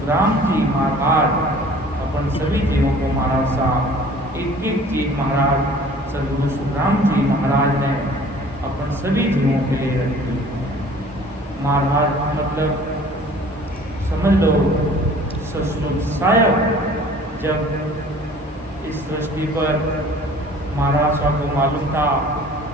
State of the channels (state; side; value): normal; both; correlation 0.49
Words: जी महाराज अपन सभी जीवों को महाराज साहब एक एक चीज महाराज सद्गुरु सुखराम जी महाराज ने अपन सभी जीवों के लिए रखी। महाराज मतलब समझ लो ससुर साहब जब इस सृष्टि पर महाराज साहब को मालूम था